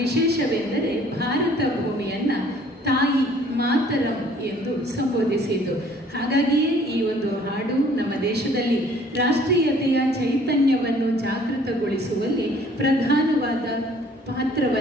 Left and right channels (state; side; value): normal; both; correlation 0.56